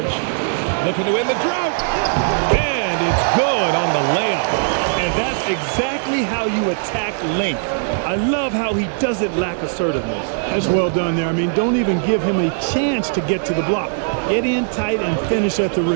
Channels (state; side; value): silent; left; digital silence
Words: Looking to end the drought. And it's good on the layup. And that's exactly how you attack length. I love how he doesn't lack assertiveness. That's well done there. I mean, don't even give him a chance to get to the block. Get in tight and finish at the